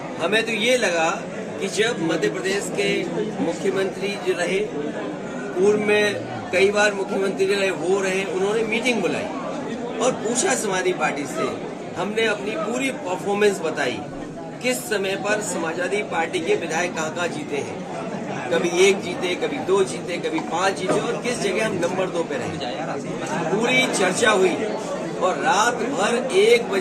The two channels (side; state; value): both; identical; correlation 1.00